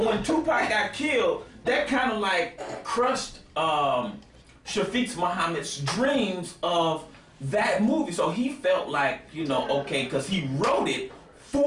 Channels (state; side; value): identical; both; correlation 1.00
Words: Tupac got killed, that kind of like crushed Shafiq Muhammad's dreams of that movie. So he felt like, okay, because he wrote it